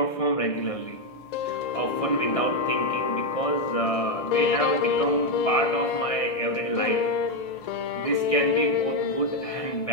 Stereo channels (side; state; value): right; late; 1.6 ms